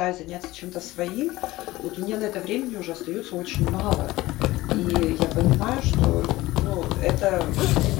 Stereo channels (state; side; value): quieter; right; 18.2 dB